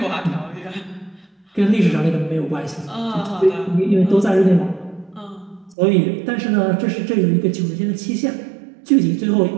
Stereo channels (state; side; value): drops out; left; at 5.8 s